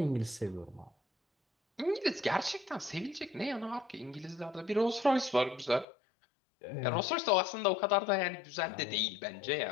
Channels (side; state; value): right; drops out; at 5.9 s